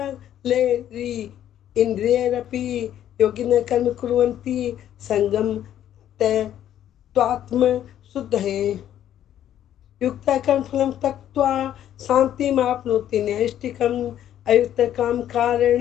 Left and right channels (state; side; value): quieter; right; 11.1 dB